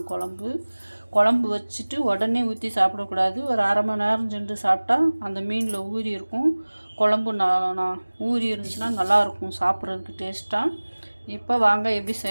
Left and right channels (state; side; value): inverted; both; correlation -1.00